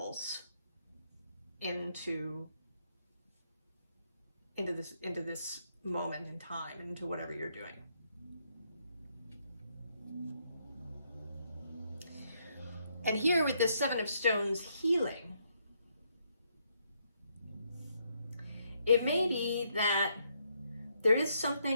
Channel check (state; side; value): inverted; both; correlation -0.75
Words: into this moment in time, into whatever you're doing. And here with the Seven of Stones healing, it may be that there is